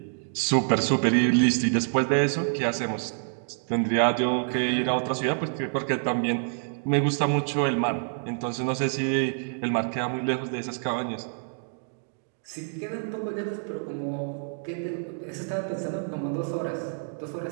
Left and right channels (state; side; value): silent; left; digital silence